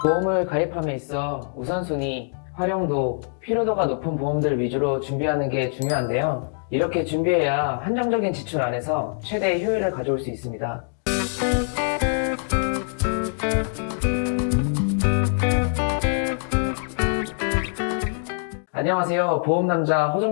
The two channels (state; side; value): silent; right; digital silence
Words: 보험을 가입함에 있어 우선순위, 활용도, 필요도가 높은 보험들 위주로 준비하는 게 중요한데요. 이렇게 준비해야 한정적인 지출 안에서 최대의 효율을 가져올 수 있습니다. 안녕하세요. 보험남자